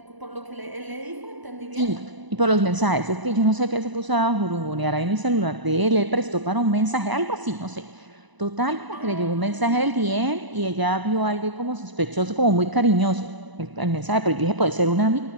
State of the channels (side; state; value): left; late; 1.0 ms